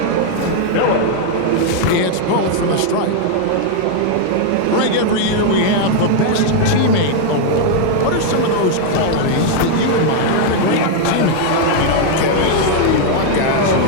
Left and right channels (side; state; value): both; different; correlation 0.00